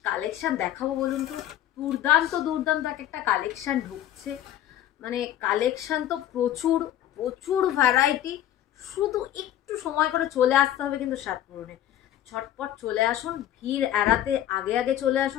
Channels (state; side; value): quieter; right; 12.1 dB